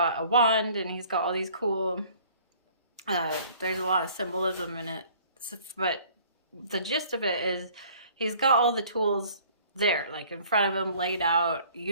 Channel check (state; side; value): inverted; both; correlation -0.54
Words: a wand and he's got all these cool, there's a lot of symbolism in it, but the gist of it is he's got all the tools there, like in front of him, laid out.